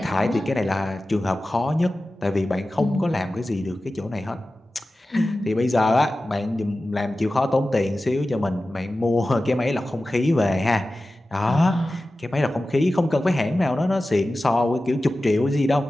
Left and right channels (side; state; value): both; normal; correlation 0.95